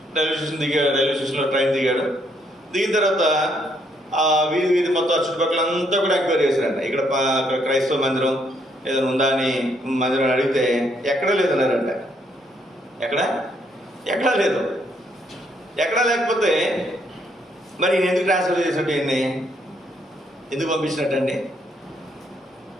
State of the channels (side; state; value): both; normal; correlation 0.71